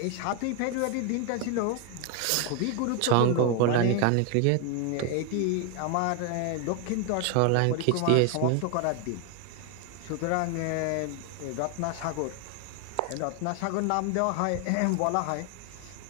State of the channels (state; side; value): different; both; correlation 0.01